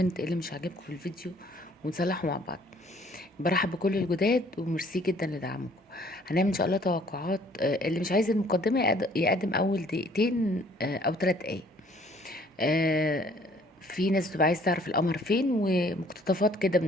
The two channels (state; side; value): normal; both; correlation 0.58